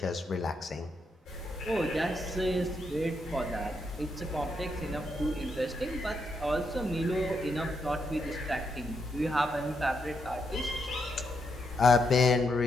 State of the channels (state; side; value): normal; both; correlation 0.80